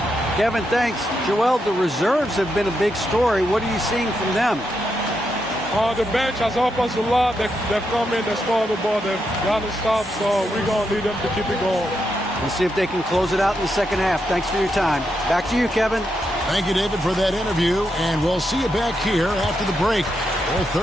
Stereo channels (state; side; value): normal; both; correlation 0.83